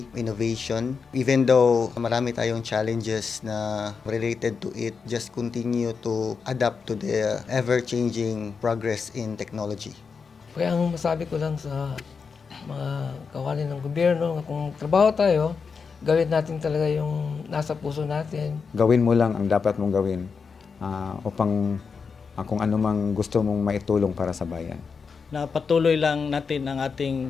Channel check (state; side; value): quieter; right; 5.5 dB